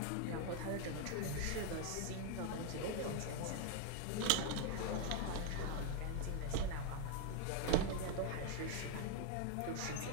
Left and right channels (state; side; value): different; both; correlation 0.00